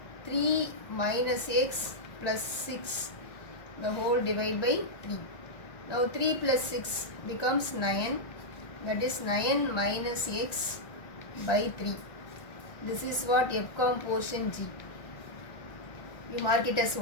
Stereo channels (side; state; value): right; late; 1.6 ms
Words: 3 minus x plus 6 the whole divide by 3. Now 3 plus 6 becomes 9, that is 9 minus x by 3. This is what F composition G. You mark it as